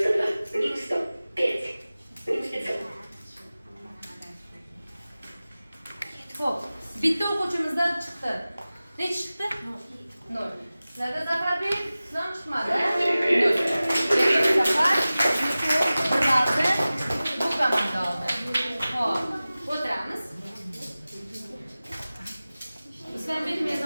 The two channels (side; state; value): both; inverted; correlation -0.97